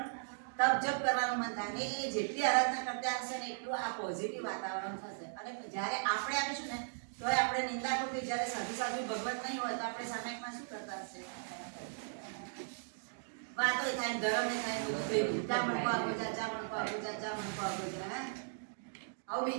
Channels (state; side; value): silent; left; digital silence